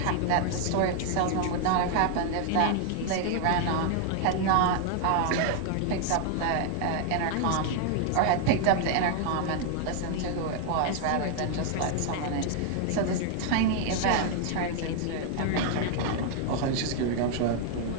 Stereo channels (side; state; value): both; different; correlation 0.00